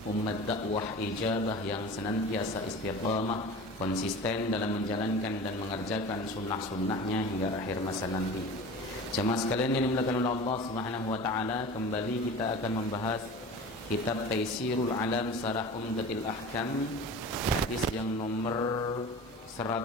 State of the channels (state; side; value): normal; both; correlation 0.36